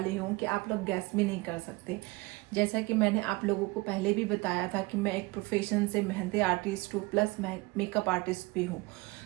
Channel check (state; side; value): quieter; left; 23.8 dB